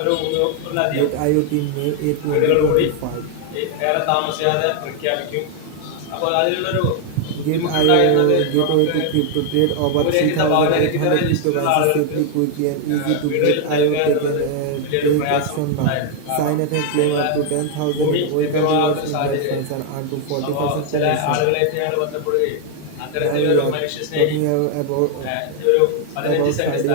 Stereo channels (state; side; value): different; both; correlation 0.00